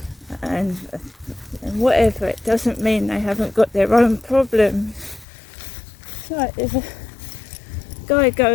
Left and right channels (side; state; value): right; drops out; at 5.2 s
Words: and whatever, it doesn't mean they haven't got their own problems. It's like there's a guy